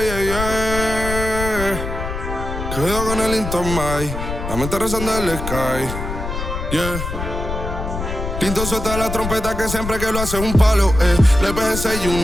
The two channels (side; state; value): left; noise; rumble, 5 dB below the sound